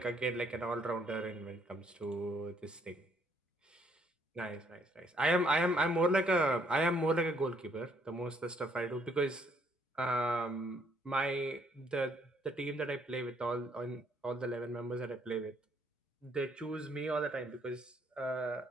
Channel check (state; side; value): normal; both; correlation 0.67